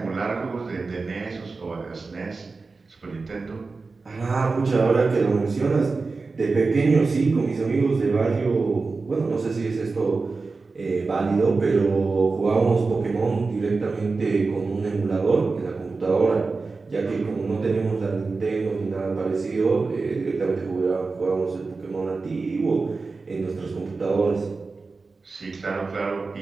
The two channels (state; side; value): quieter; left; 4.1 dB